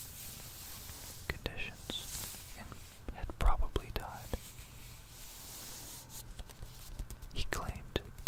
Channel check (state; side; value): identical; both; correlation 1.00